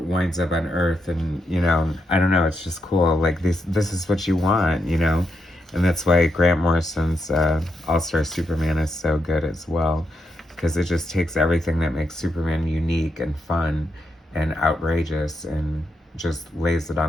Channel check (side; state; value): both; normal; correlation 0.82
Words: up on Earth, and, you know, I don't know, it's just cool. Like, this is what you want, you know? And that's why Grant Morrison's All-Star Superman is so good as well, because it just takes everything that makes Superman unique and fun and outrageous and just lays it